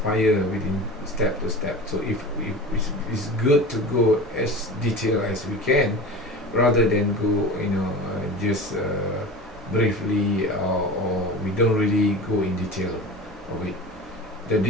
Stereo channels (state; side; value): normal; both; correlation 0.34